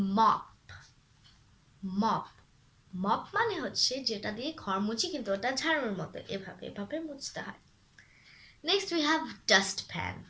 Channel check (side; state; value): both; identical; correlation 1.00